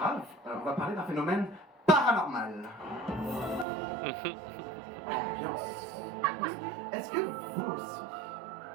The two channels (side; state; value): left; drops out; at 3.7 s